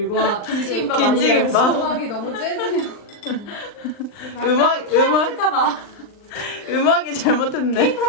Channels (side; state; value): right; late; 39 ms